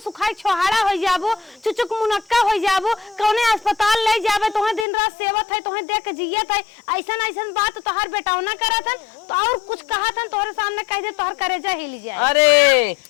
छोहाड़ा हो जाबू, चुचुक मुनक्का हो जाबू, कौने अस्पताल ले जाबे, तोहे दिन रात सेवत है, तोहे देख जियत है, ऐसन ऐसन बात तोहर बेटावना करत हन तो और कुछ कहा था तोहरे सामने कह दे तोहर करेजा हिल जाए। अरे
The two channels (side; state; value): right; drops out; at 4.9 s